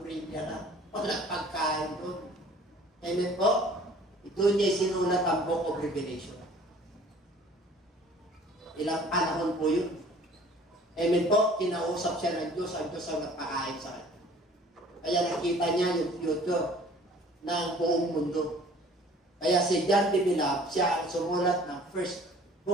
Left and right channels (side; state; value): both; normal; correlation 0.51